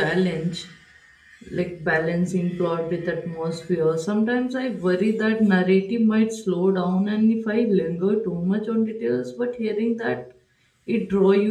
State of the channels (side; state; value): both; identical; correlation 1.00